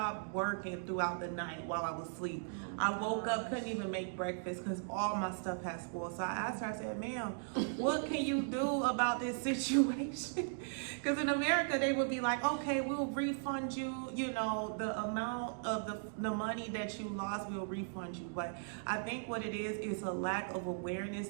working throughout the night while I was asleep. I woke up, couldn't even make breakfast because all my stuff had spoiled. So I asked her, I said, "Ma'am, what can you do about this situation?" Because in America, they would be like, "Okay, we'll refund you, you know, the amount of the money that you lost, we'll refund you." But I think what it is a lack of awareness.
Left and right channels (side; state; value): left; silent; digital silence